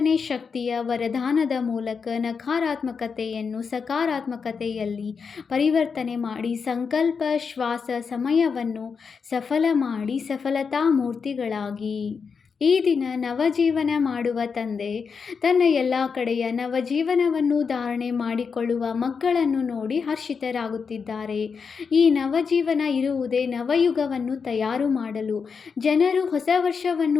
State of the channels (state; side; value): quieter; right; 5.7 dB